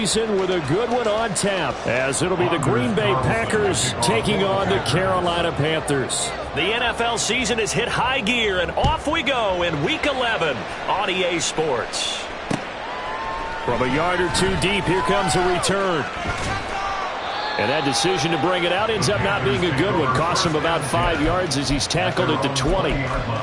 with a good one on tap, as it'll be the Green Bay Packers taking on the Carolina Panthers. The NFL season has hit high gear, and off we go in Week 11 on EA Sports. From a yard or two deep, here comes a return. And that decision to bring it out ends up not being a good one. Costs him about 5 yards as he's tackled at the 20.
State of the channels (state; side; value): identical; both; correlation 1.00